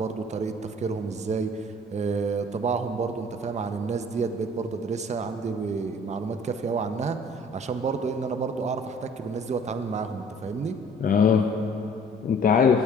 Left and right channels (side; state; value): both; normal; correlation 0.53